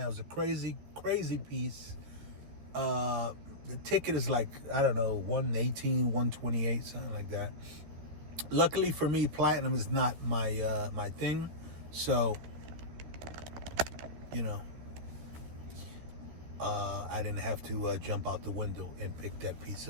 it was a crazy, crazy piece. The ticket is like, I don't know, 118, 128, something like that. Luckily for me, platinum is not my my thing. So, I didn't have to jump out the window and pick that piece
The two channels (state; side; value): late; left; 14 ms